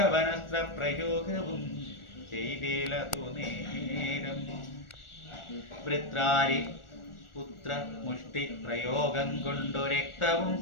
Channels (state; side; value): late; right; 1.4 ms